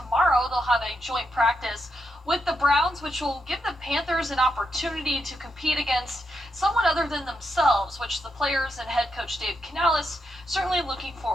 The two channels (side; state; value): both; normal; correlation 0.83